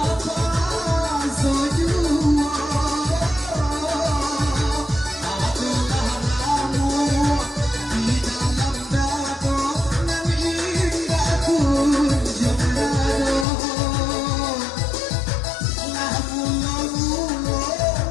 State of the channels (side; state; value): right; drops out; at 13.5 s